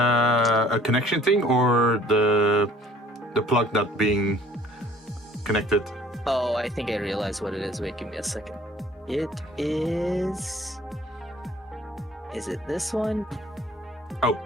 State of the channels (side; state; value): both; normal; correlation 0.54